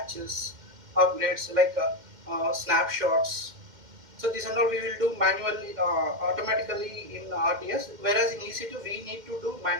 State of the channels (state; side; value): late; left; 2.1 ms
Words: upgrades like snapshots. So this and all we will do manually, automatically in RDS. Whereas in EC2 we need to do